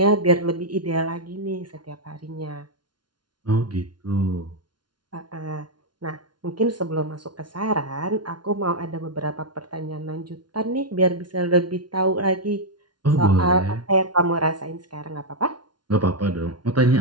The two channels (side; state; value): left; late; 0.70 ms